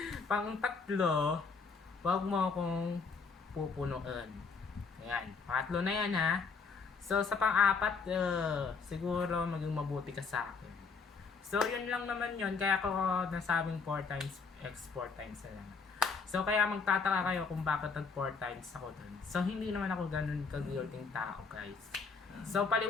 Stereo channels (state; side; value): quieter; right; 5.0 dB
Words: pang-tatlo, wag mo akong pupunuan. Ayan, pangatlo na yan ha. So, sa pang-apat, siguro maging mabuti ka sa akin. So, yun lang naman yun. Kaya ako nasabing 4 times X 4 times na lang. So, kaya magtataka kayo kung bakit nag 4 times ako dun. So, hindi naman ako ganun ka-guilting tao, guys. So,